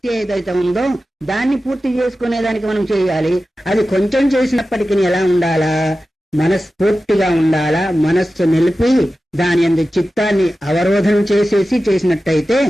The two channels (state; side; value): normal; both; correlation 0.94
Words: ఏదైతే ఉందో దాన్ని పూర్తి చేసుకునేదానికి మనం చేయాలి. అది కొంచెం చేసినప్పటికీ ఎలా ఉండాలా, మనస్ఫూర్తిగా ఉండాలా. మనస్సు నిలిపి దాని అందు చిత్తాన్ని అవరోధనం చేసినట్టయితే